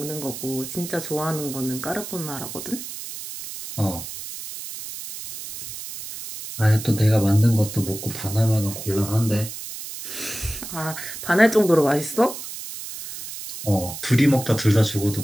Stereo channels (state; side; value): noise; right; hiss, 10 dB below the sound